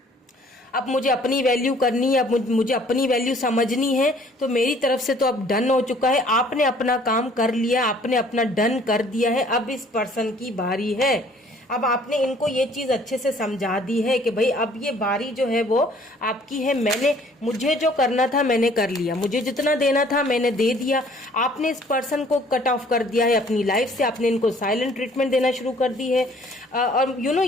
अब मुझे अपनी वैल्यू करनी है, अब मुझे अपनी वैल्यू समझनी है, तो मेरी तरफ से तो अब डन हो चुका है। आपने अपना काम कर लिया, आपने अपना डन कर दिया है, अब इस पर्सन की बारी है। अब आपने इनको ये चीज अच्छे से समझा दी है कि भाई अब ये बारी जो है वो आपकी है। मुझे जो करना था मैंने कर लिया, मुझे जितना देना था मैंने दे दिया। आपने इस पर्सन को कट ऑफ कर दिया है अपनी लाइफ से, आपने इनको साइलेंट ट्रीटमेंट देना शुरू कर दी है। और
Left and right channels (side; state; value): both; normal; correlation 0.57